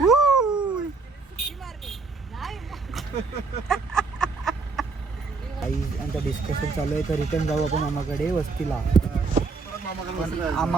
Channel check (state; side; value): quieter; left; 4.3 dB